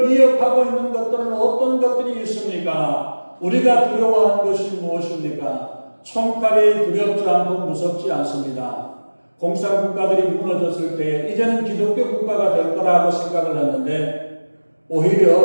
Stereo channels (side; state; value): both; inverted; correlation -1.00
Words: 위협하고 있는 것들은 어떤 것들이 있습니까? 우리가 두려워하는 것이 무엇입니까? 총칼이 두렵지 않고 무섭지 않습니다. 공산국가들이 무너졌을 때 이제는 기독교 국가가 될 거라고 생각을 했는데